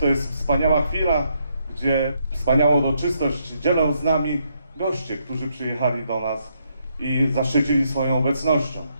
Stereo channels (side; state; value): both; inverted; correlation -0.76